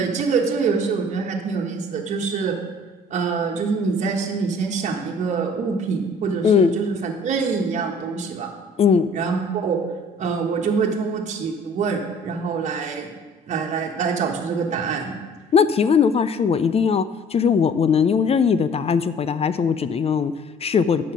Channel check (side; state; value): both; normal; correlation 0.52